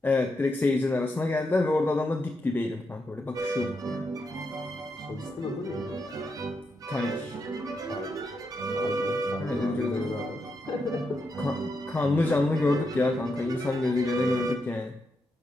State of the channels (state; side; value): normal; both; correlation 0.83